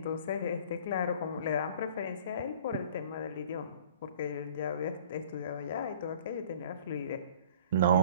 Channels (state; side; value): inverted; both; correlation -0.48